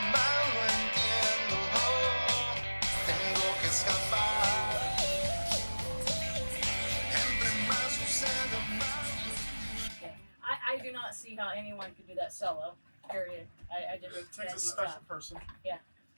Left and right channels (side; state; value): both; inverted; correlation -1.00